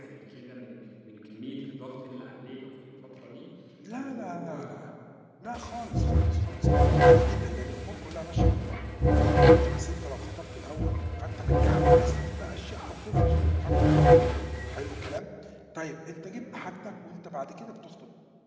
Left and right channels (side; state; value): both; identical; correlation 1.00